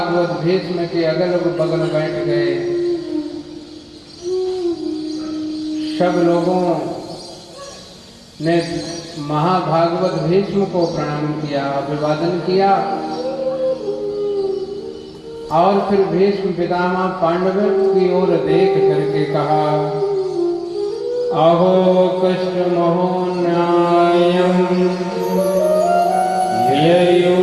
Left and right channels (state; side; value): identical; both; correlation 1.00